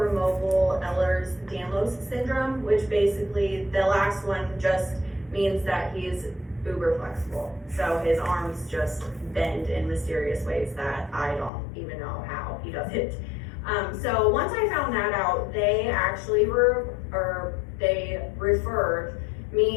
Ehlers-Danlos syndrome, which basically the last one just means that he's uber flexible. So his arms just bend in mysterious ways that I don't even know how he does it. So once I found that out, they actually they referred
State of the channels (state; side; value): drops out; right; at 11.5 s